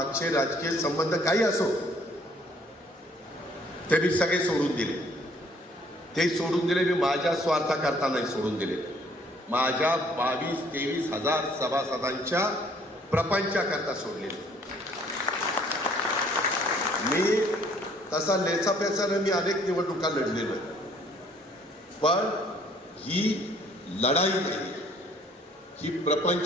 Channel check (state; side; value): normal; both; correlation 0.60